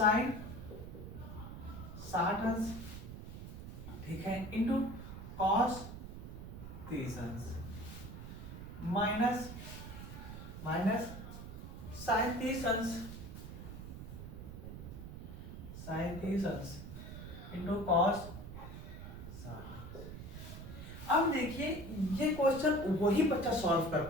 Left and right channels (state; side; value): noise; right; rumble, 10 dB below the sound